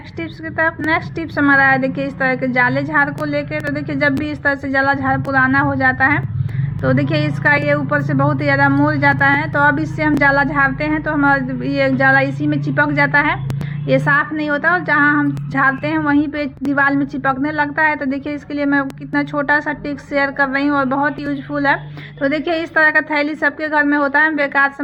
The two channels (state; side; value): identical; both; correlation 1.00